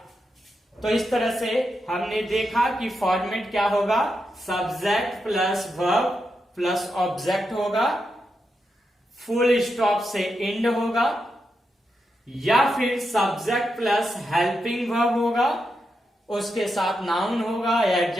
तो इस तरह से हमने देखा कि फॉर्मेट क्या होगा, subject plus verb plus object होगा, फुल स्टॉप से एंड होगा, या फिर सब्जेक्ट प्लस हेल्पिंग वर्ब होगा, उसके साथ नाउन होगा या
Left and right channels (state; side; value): normal; both; correlation 0.86